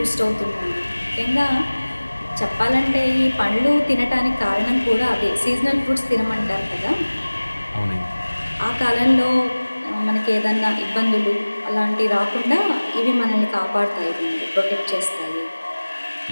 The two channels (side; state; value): both; inverted; correlation -1.00